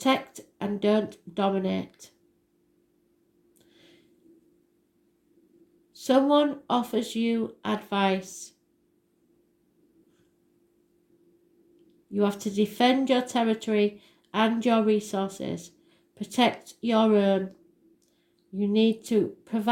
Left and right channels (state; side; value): identical; both; correlation 1.00